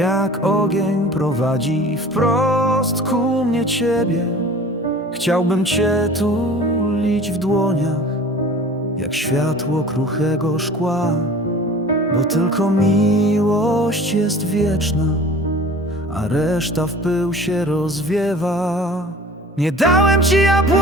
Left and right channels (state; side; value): normal; both; correlation 0.43